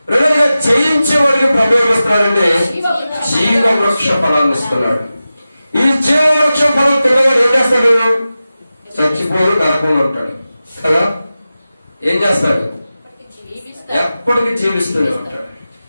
రెండోదిగా జయించేవాడికి ప్రవేశిస్తున్నాడంటే జీవవృక్ష ఫలాన్ని ఇస్తున్నాడు. ఈ జీవవృక్ష ఫలం తిన్నవాడు ఏం చేస్తాడు? చచ్చిపోడు, నరకంలో ఉంటాడు కదా. ఏం చేస్తాడు? ఎప్పటికీ జీవిస్తూనే ఉంటాడు.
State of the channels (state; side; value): inverted; both; correlation -0.94